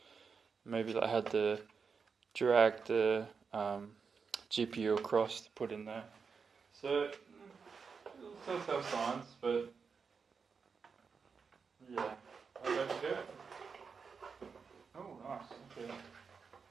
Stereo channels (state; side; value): quieter; left; 5.5 dB